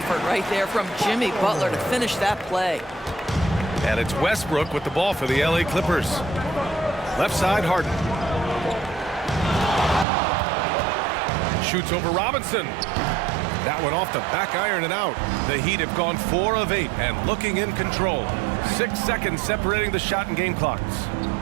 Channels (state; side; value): drops out; left; at 10.1 s